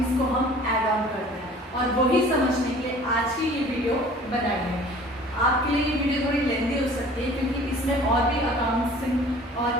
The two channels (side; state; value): both; normal; correlation 0.48